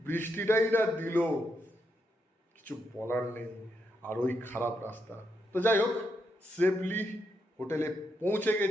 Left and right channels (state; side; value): normal; both; correlation 0.81